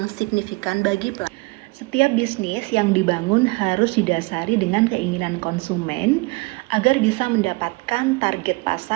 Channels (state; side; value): quieter; left; 25.9 dB